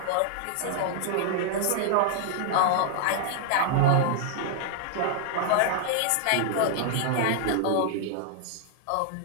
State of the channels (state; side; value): different; both; correlation 0.00